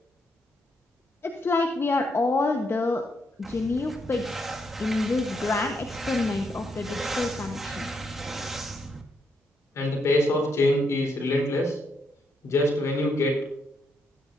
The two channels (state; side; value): normal; both; correlation 0.78